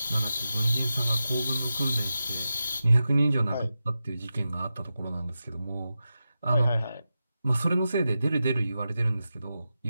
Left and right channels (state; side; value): inverted; both; correlation -0.91